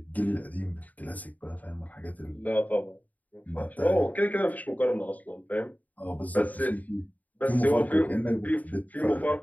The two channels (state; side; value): late; right; 0.076 ms